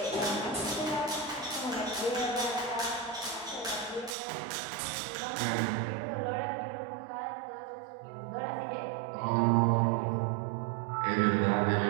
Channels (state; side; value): drops out; left; at 4.2 s